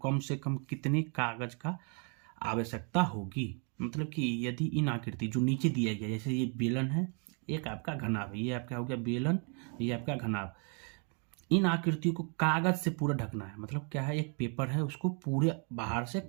कम से कम कितने कागज का आवश्यकता होगी। मतलब कि यदि इन आकृति जो नीचे दिया गया, जैसे ये बेलन है, एक आपका घनाभ है, ये आपका हो गया बेलन, ये आपका घनाभ, इन आकृतियों को कागज से पूरा ढकना है। मतलब क्या है, एक पेपर है उसको पूरे बाहर से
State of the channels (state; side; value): quieter; left; 38.3 dB